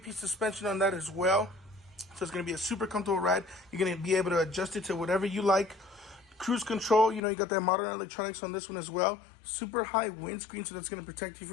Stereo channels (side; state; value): right; drops out; at 7.2 s